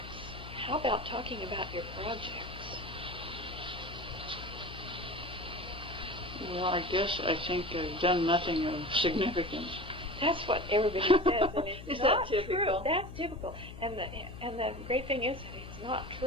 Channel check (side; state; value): left; noise; hum, 13 dB below the sound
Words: How about talking about your projects? Well, I think I've done nothing of significance. That's what everybody says, and it's Is not that typical? true. That's typical. And the great thing is that it's not